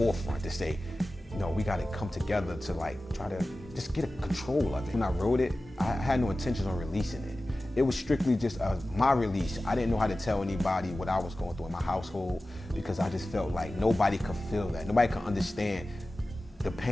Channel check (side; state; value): both; normal; correlation 0.96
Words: to say, we got to come together to try to just get a control of it. When I wrote it, I had no intentions on releasing it. It was strictly just my release. I didn't know how to tell anybody what I was going through in my household, because I just felt like nobody could feel that. Nobody could understand the